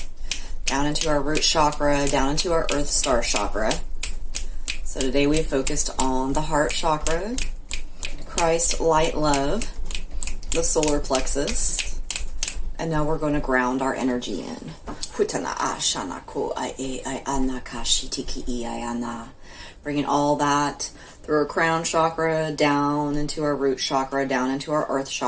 down into our root chakra, down into our earth star chakra. So today we focused on the heart chakra, Christ, light, love, the solar plexus, and now we're going to ground our energy in. Bringing all that through our crown chakra, down into our root chakra, down into our earth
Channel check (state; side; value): identical; both; correlation 1.00